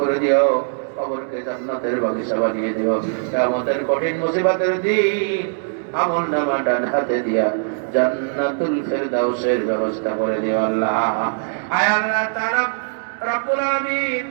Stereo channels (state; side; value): silent; left; 65 dB below the other